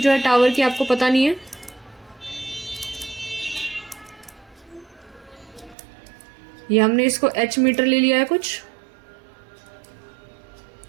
है टावर की आपको पता नहीं है। ये हमने इसको h मीटर ले लिया है कुछ।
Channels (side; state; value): left; drops out; at 5.8 s